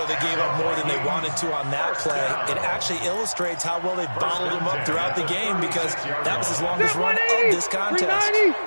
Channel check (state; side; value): inverted; both; correlation -1.00